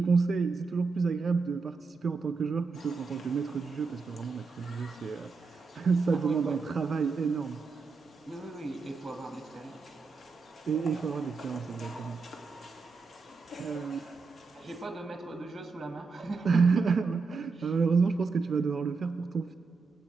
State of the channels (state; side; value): quieter; left; 4.6 dB